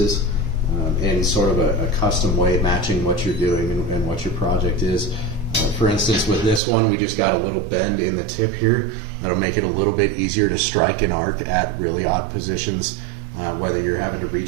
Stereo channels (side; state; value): left; drops out; at 6.6 s